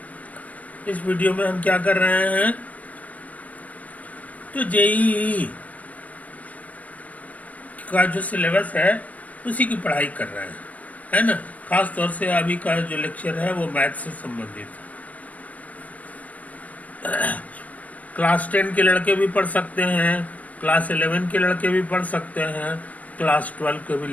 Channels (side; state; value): right; late; 0.072 ms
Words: इस वीडियो में हम क्या कर रहे हैं, तो जेईई का जो सिलेबस है उसी की पढ़ाई कर रहे हैं, है ना। खास तौर से अभी का जो लेक्चर है वो मैथ से संबंधित है। क्लास 10 के लड़के भी पढ़ सकते हैं, क्लास 11 के लड़के भी पढ़ सकते हैं, क्लास 12 के भी